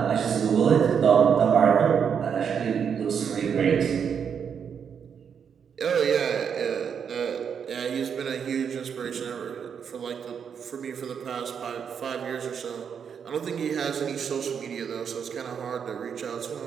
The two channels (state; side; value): quieter; left; 7.3 dB